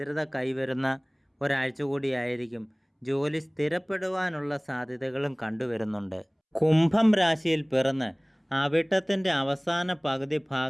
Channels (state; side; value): identical; both; correlation 1.00